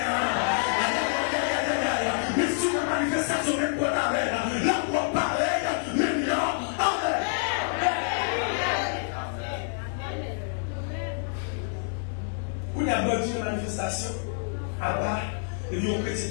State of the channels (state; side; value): silent; right; digital silence